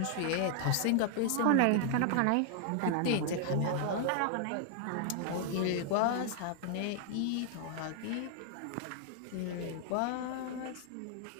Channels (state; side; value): different; both; correlation 0.00